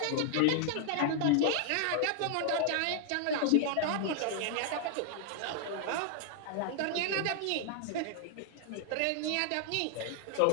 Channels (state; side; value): different; both; correlation 0.00